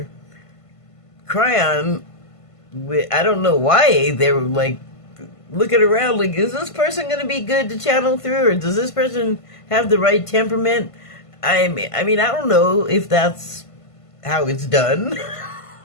Cryon. I don't know why they were looking around is this person going to be good to channel through, or does this person have the right temperament? I mean, I don't know if that's how it's done.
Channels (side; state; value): right; late; 1.5 ms